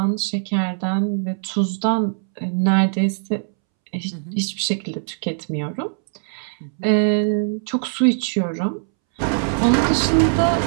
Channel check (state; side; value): silent; left; 65 dB below the other